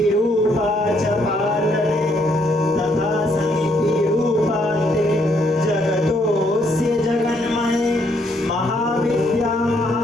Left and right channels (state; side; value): normal; both; correlation 0.71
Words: च पालने तथा समितिरूपा ते जगतोऽस्य जगन्मये महाविद्या